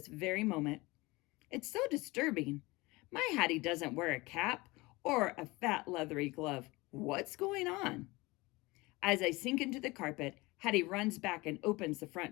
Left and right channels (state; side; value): quieter; right; 22.6 dB